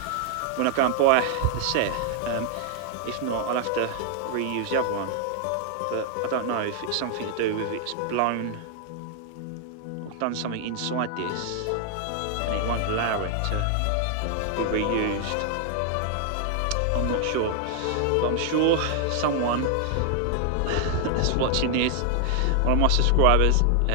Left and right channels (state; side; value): different; both; correlation 0.00